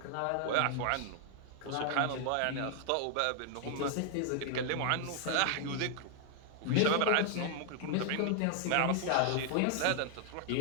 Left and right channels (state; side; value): different; both; correlation 0.00